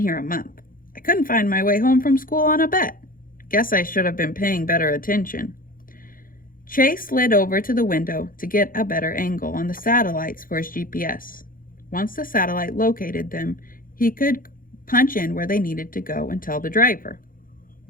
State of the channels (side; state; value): right; late; 0.41 ms